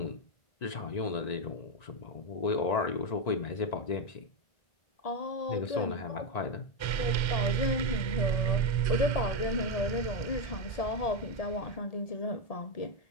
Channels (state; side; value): late; right; 1.3 ms